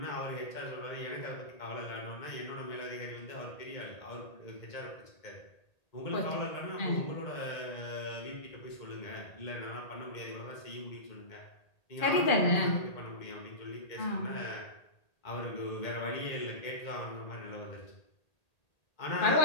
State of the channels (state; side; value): late; right; 1.8 ms